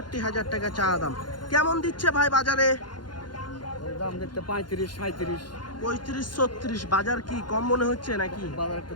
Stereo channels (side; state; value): right; late; 0.71 ms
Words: টাকা চা দাম। কেমন দিচ্ছে ভাই বাজারে? দাম দেখতে 35-37। 35-36। বাজার কি কম মনে হচ্ছে নাকি? বাজার একটু